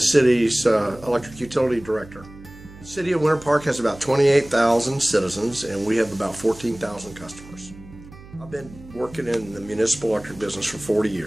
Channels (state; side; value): noise; right; hum, 19 dB below the sound